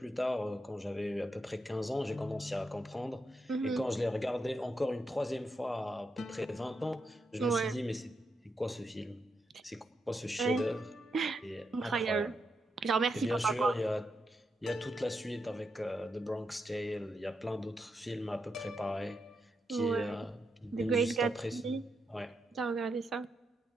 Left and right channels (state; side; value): normal; both; correlation 0.83